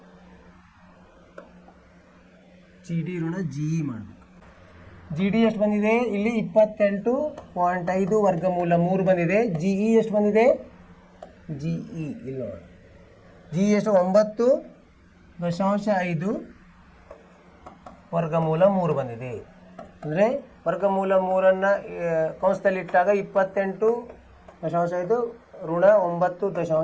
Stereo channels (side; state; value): both; identical; correlation 1.00